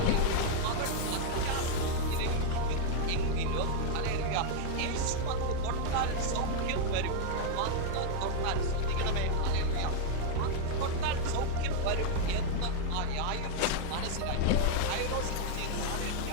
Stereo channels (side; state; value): both; different; correlation 0.00